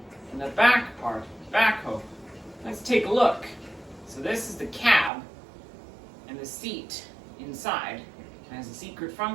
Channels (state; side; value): drops out; left; at 5.1 s